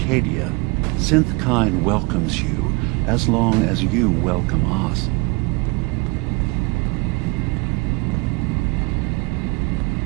Synthkind welcomes you as long as you welcome us.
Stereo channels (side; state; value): left; quieter; 26.7 dB